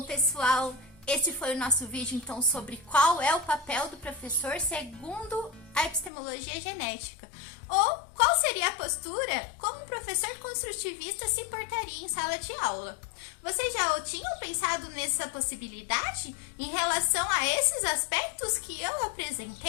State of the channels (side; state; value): right; drops out; at 6.1 s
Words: pessoal, esse foi o nosso vídeo, então, sobre qual é o papel do professor segundo a epistemologia genética. Ou qual seria a postura como um professor construtivista se portaria em sala de aula. Vocês já tinham pensado nessa possibilidade em relação a esses aspectos que eu